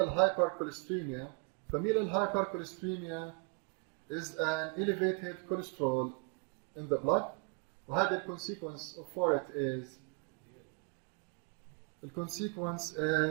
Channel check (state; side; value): quieter; left; 37.2 dB